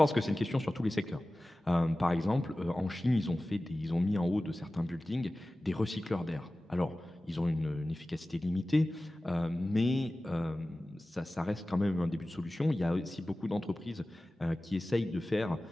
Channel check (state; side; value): normal; both; correlation 0.97